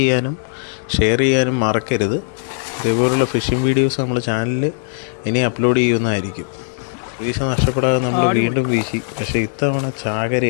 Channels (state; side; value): silent; right; 67 dB below the other